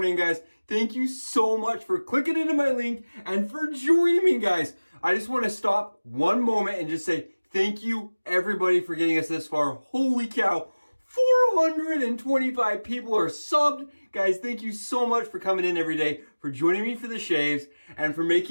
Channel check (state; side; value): inverted; both; correlation -1.00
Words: guys. Thank you so much for clicking into my link and for joining me, guys. I just want to stop one moment and just say thank you, everybody, for getting us this far. Holy cow, 425 people are subbed. Guys, thank you so much for coming in every day, for joining me for the shaves, and for